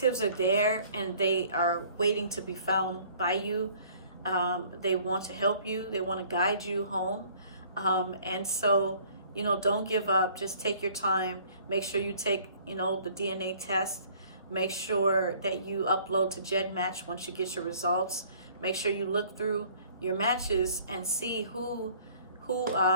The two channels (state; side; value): inverted; both; correlation -0.55